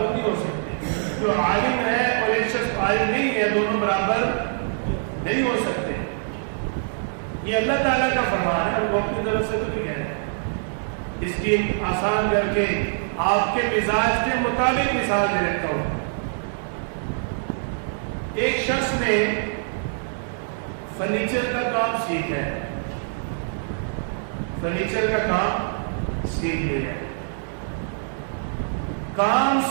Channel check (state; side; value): silent; left; 59 dB below the other